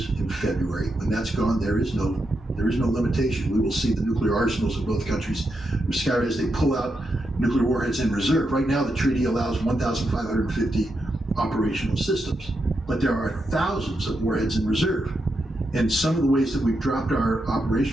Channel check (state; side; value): normal; both; correlation 0.84